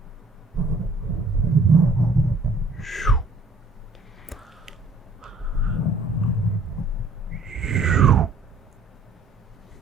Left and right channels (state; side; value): quieter; left; 3.2 dB